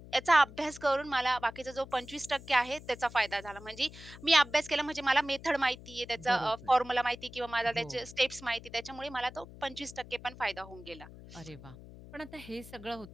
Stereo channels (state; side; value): noise; left; hum, 17 dB below the sound